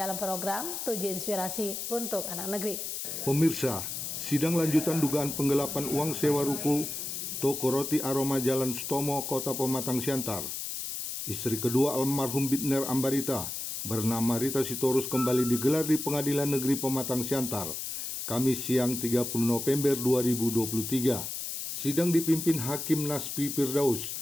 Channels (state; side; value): noise; left; hiss, 5 dB below the sound